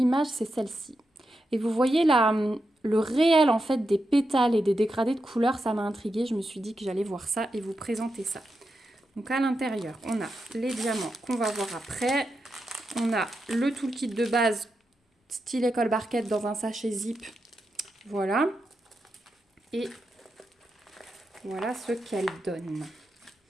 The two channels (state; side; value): normal; both; correlation 0.87